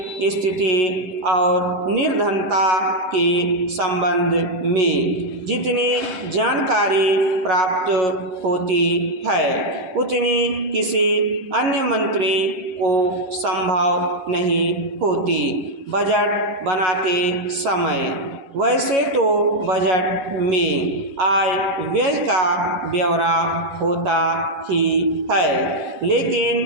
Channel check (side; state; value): left; late; 11 ms